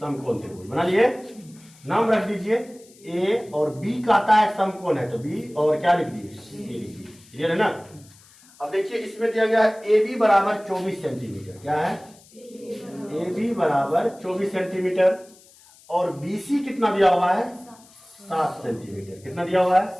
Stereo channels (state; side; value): noise; left; hiss, 26 dB below the sound